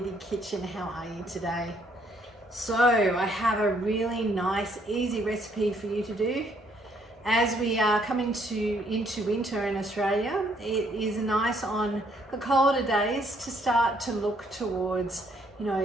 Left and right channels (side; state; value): both; normal; correlation 0.68